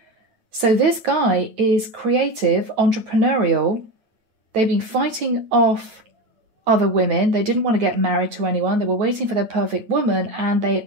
So this guy is creative, entrepreneurial. They've been fighting off other women. They didn't want to get married to anyone. They were waiting for their perfect woman, and they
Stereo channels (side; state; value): left; late; 9.0 ms